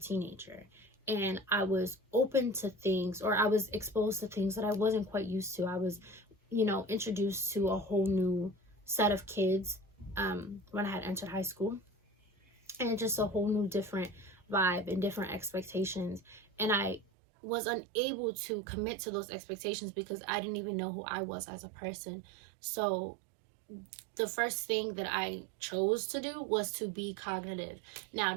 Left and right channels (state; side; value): drops out; left; at 17.1 s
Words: And I was open to things, or I was exposed to things that I wasn't quite used to. I was, you know, introduced to a whole new set of kids when I had entered high school. And just a whole new different vibe and different expectations. And I was unable to commit to those expectations because I didn't even know who I was as a person. So the first thing that I chose to do was to be cognitive. Now,